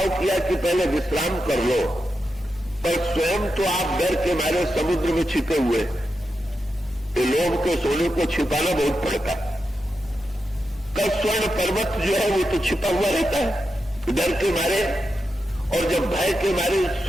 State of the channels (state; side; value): normal; both; correlation 0.88